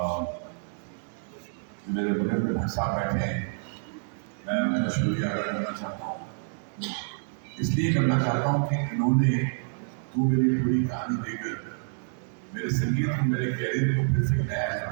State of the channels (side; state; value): left; silent; digital silence